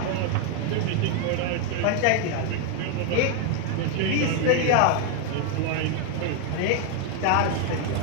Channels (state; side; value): different; both; correlation 0.01